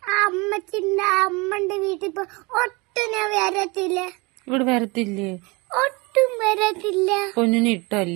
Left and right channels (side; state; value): left; quieter; 26.5 dB